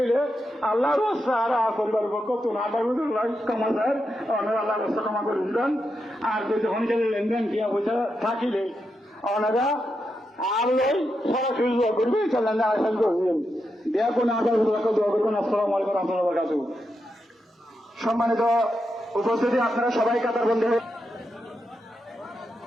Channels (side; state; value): both; normal; correlation 0.85